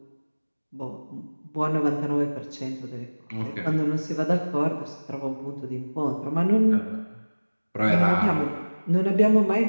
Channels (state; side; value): inverted; both; correlation -1.00